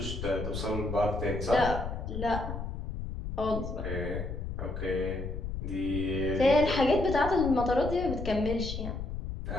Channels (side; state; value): left; noise; rumble, 6 dB below the sound